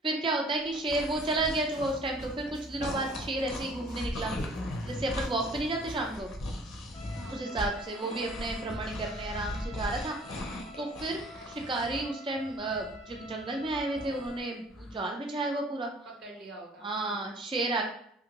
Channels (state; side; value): normal; both; correlation 0.53